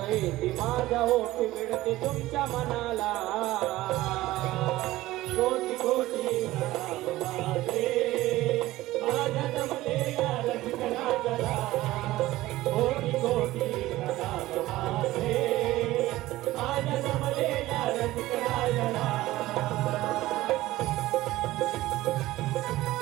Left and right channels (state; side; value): quieter; left; 16.8 dB